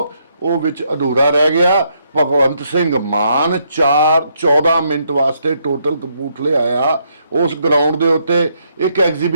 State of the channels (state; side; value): inverted; both; correlation -0.75